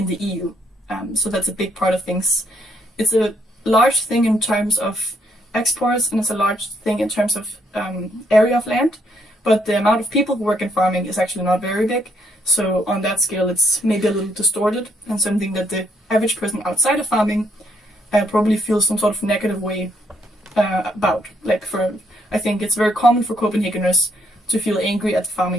the EU. So that's a big part of things. It's a large thing in terms of exports, and it's a large thing in terms of area of land, but the amount of people who work in farming is actually not very big. So on that scale, it's maybe a little distorted, and something that the average person outside of farming probably feels some sort of negative way about. I think it's very common for Copenhageners to feel angry at the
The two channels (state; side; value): normal; both; correlation 0.72